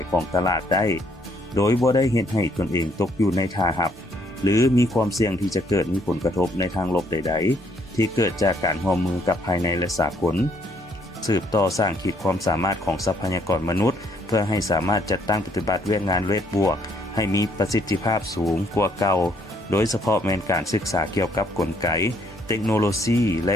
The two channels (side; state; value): both; normal; correlation 0.67